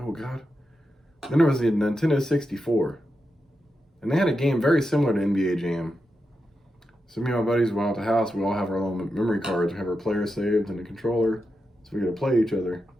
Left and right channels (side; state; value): both; normal; correlation 0.88